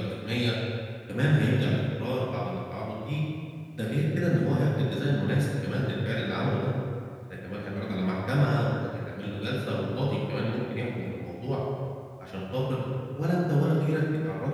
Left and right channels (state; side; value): identical; both; correlation 1.00